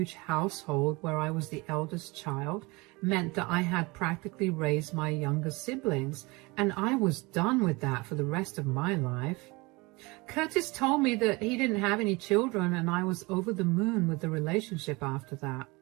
household where I was the eldest child meant that I had practically raised my younger siblings, and I was done with that for the rest of my life. Curtis told me that he didn't have any children, and I was over the moon with the relationship after that.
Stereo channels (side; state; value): left; quieter; 24.8 dB